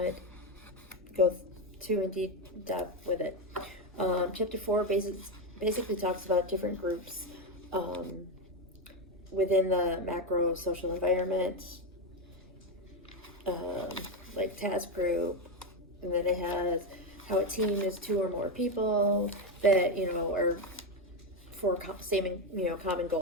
go too in deep depth with it. Chapter 4 basically talks about different groups within the macro social environment, like task group, and then it has how a team is 2 or more people that, are for common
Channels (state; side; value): normal; both; correlation 0.10